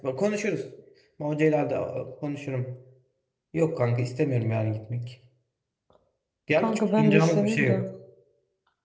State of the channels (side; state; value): both; identical; correlation 1.00